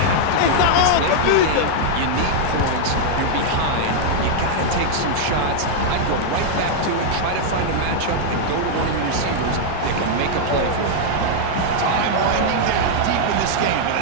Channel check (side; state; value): both; different; correlation -0.01